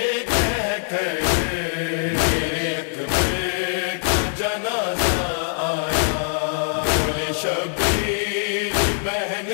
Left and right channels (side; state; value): right; silent; digital silence